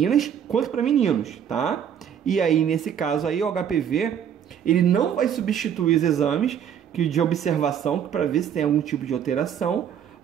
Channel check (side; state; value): left; quieter; 8.8 dB